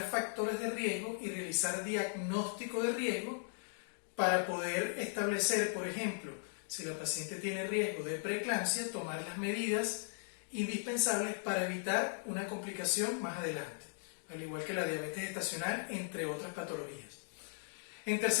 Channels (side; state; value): right; silent; digital silence